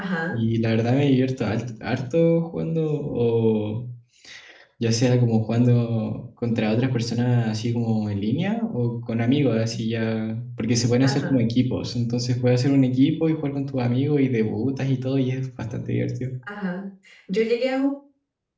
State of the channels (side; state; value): both; identical; correlation 1.00